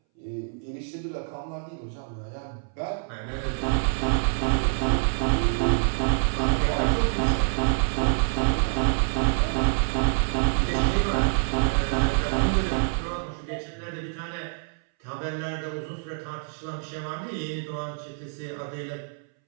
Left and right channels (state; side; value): silent; left; 61 dB below the other